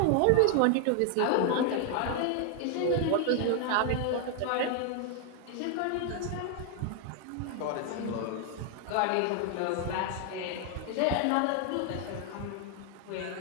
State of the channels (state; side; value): different; both; correlation 0.00